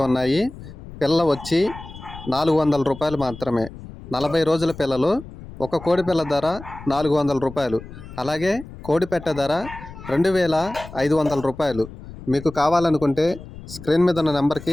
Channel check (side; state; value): left; noise; rumble, 15 dB below the sound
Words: ఉన్నాయి. పిల్ల వచ్చి 400 రూపాయలు మాత్రమే. 40 రోజుల పిల్లలు. ఒక కోడి పిల్ల ధర 400 రూపాయలు. అలాగే కోడి పెట్ట ధర 2500 రూపాయలు. మీకు కావాలనుకుంటే స్క్రీన్ మీద ఉన్న